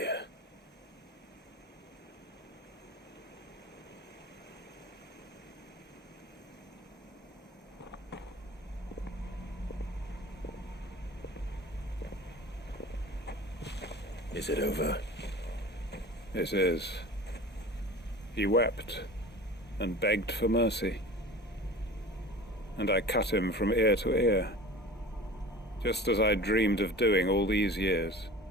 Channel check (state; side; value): normal; both; correlation 0.39